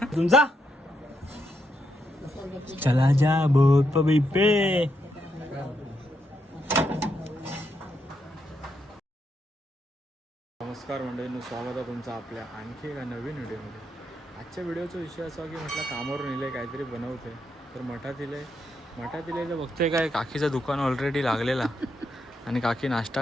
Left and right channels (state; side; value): normal; both; correlation 0.80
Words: तुमचा चला जा बोट पे पे. नमस्कार मंडळींनो, स्वागत आहे तुमचं आपल्या आणखी एका नवीन व्हिडिओमध्ये. आजच्या व्हिडिओचा विषय असा की म्हटलं कामावरून इले काहीतरी बनवते तर मठात इले तर बघते काय काकीचं दुकान ऑलरेडी लागलेला आणि काकी